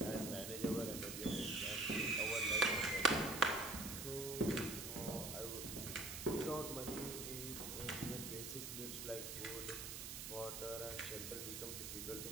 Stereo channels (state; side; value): noise; right; hiss, 6 dB below the sound